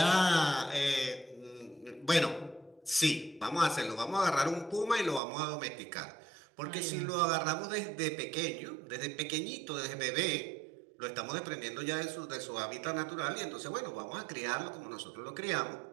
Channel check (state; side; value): drops out; left; at 5.2 s